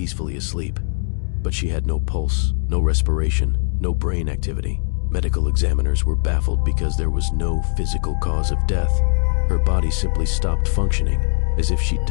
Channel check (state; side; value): silent; right; digital silence